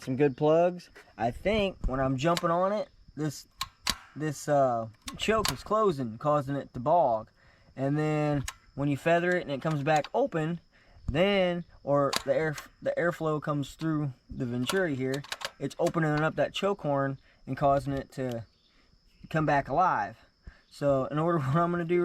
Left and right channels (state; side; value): identical; both; correlation 1.00